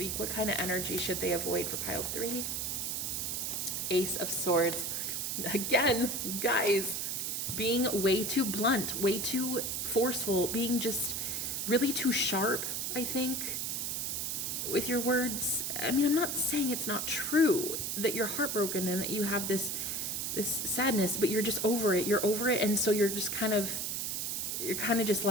What kind of energy should they avoid for pile 3? Ace of Swords. Again, guys, being way too blunt, way too forceful, being just really too sharp, I think, with your words. I mean, I'm not saying it's not true that you're heartbroken and that you have this sadness, but you're just over it. You're over it, and so you're kind of just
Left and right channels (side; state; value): right; noise; hiss, 1 dB below the sound